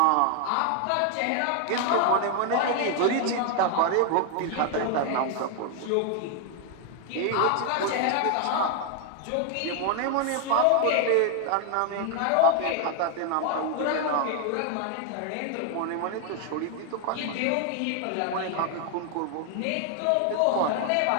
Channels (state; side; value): different; both; correlation 0.00